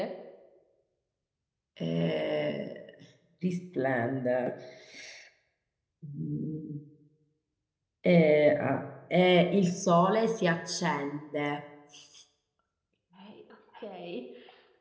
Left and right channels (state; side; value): identical; both; correlation 1.00